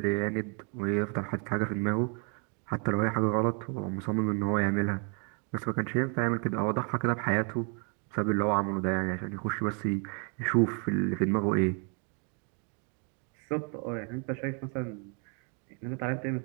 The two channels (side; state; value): left; quieter; 37.6 dB